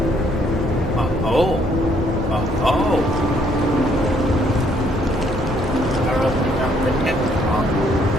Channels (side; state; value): both; normal; correlation 0.67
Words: Oh. Apparently not the net on.